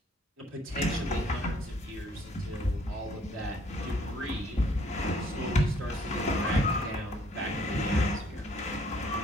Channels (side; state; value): both; normal; correlation 0.62